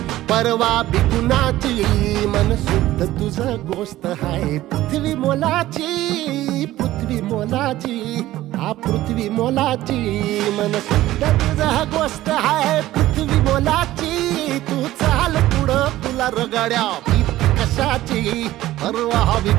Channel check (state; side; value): quieter; left; 15.4 dB